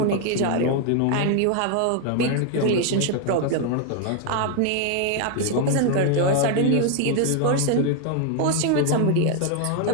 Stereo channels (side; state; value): both; different; correlation 0.00